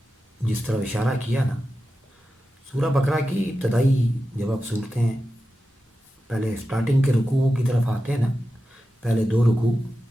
جس طرح اشارہ کیا نا, سورہ بقرہ کی ابتدائی جب آپ صورتیں پہلے سٹارٹنگ کے رکوعوں کی طرف آتے ہیں نا, پہلے 2 رکوع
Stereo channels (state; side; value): normal; both; correlation 0.92